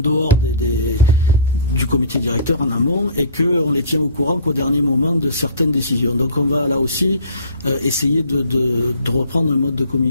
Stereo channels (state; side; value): inverted; both; correlation -0.45